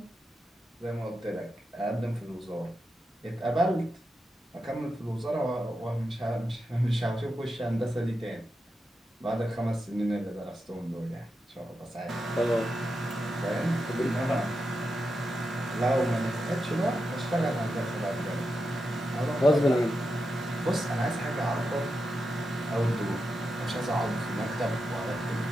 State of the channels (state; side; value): normal; both; correlation 0.87